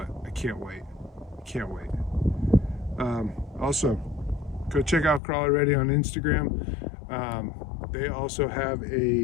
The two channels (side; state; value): right; drops out; at 5.2 s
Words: I can't wait. Can't wait. Also, go check out Crawler Ready on Instagram. They also have